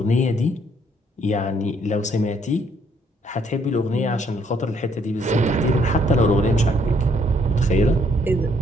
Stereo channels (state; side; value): normal; both; correlation 0.67